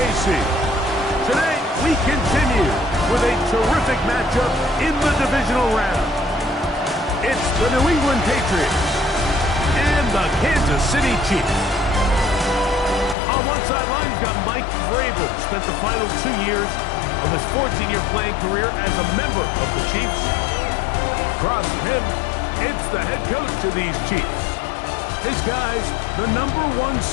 Today, we continue with a terrific matchup in the divisional round. It's the New England Patriots and the Kansas City Chiefs. On one sideline, you've got Mike Vrabel, spent the final 2 years of his 14-year playing career as a member of the Chiefs. Across from him, it's the head coach of these Chiefs. His guys, the #1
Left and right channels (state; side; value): drops out; right; at 13.2 s